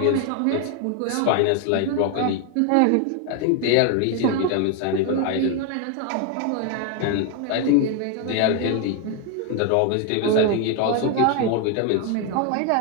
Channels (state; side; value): different; both; correlation 0.01